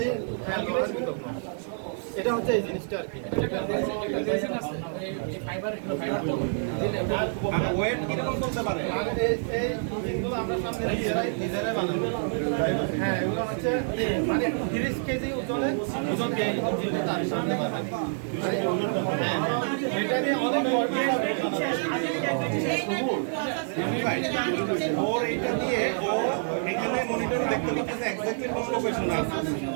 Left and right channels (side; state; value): left; silent; digital silence